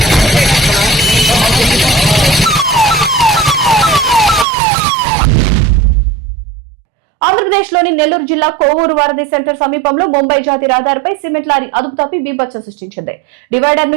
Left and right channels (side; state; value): left; drops out; at 4.5 s